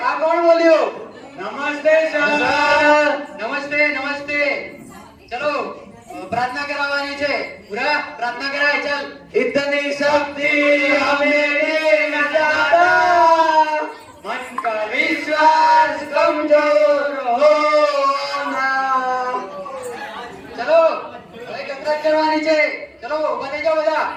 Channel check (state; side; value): identical; both; correlation 1.00